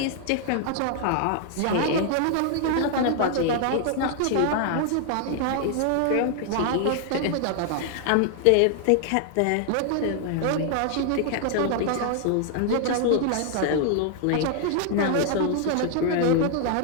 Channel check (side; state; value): both; different; correlation 0.00